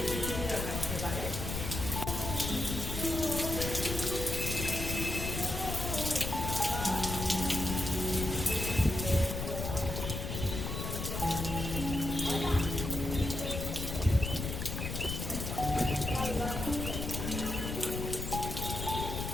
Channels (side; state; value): left; noise; rumble, 4 dB below the sound